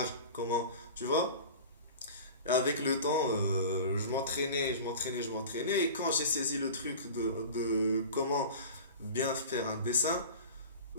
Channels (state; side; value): inverted; both; correlation -0.36